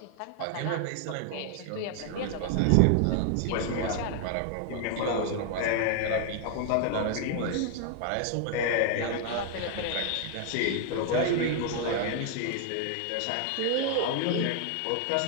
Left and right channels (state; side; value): different; both; correlation 0.00